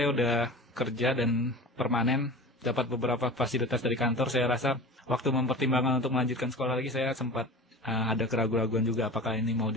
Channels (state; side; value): normal; both; correlation 0.35